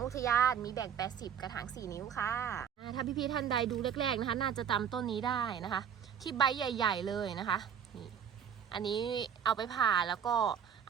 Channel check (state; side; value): quieter; left; 8.2 dB